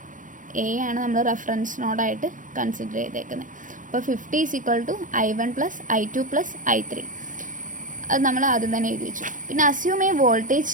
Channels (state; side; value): late; left; 0.38 ms